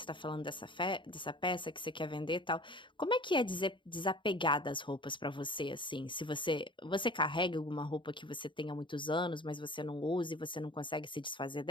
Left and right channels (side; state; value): right; late; 0.24 ms